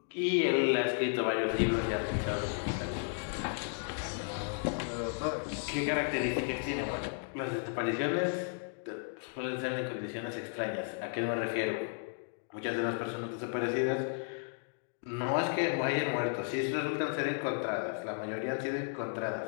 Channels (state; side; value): silent; right; 55 dB below the other